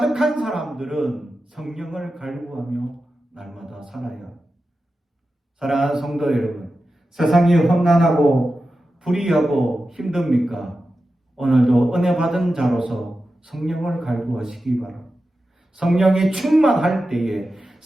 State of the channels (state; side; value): normal; both; correlation 0.92